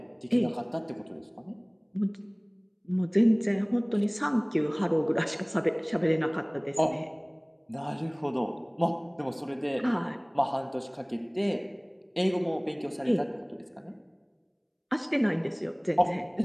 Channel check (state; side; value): identical; both; correlation 1.00